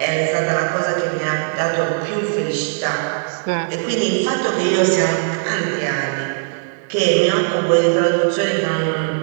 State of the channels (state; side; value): silent; left; digital silence